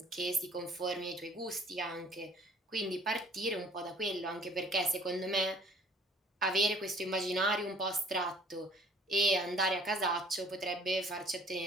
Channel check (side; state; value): both; normal; correlation 0.55